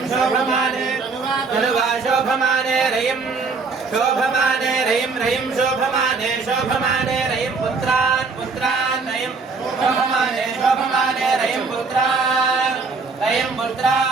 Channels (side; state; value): left; quieter; 4.5 dB